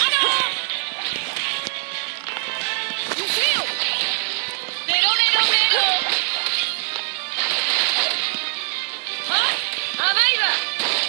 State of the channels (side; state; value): left; silent; 64 dB below the other